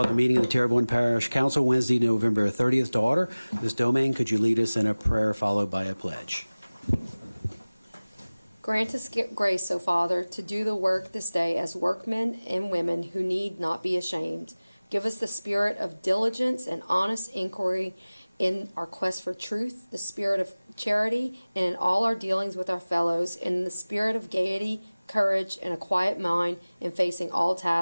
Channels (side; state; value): both; inverted; correlation -0.99